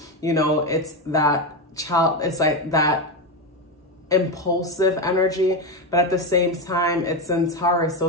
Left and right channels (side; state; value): both; normal; correlation 0.12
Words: It's that it's like that impulsive energy, but at the same time it's in Taurus.